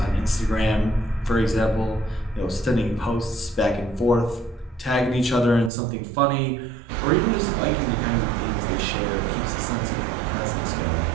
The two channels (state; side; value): drops out; left; at 5.7 s